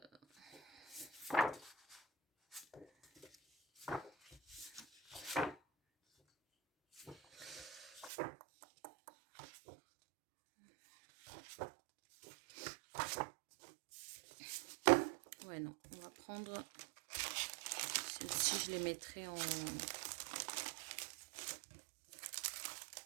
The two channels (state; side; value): drops out; left; at 8.1 s